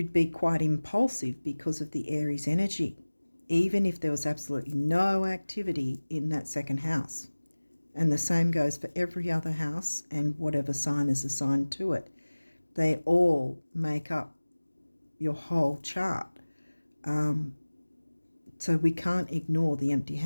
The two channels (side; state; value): both; inverted; correlation -1.00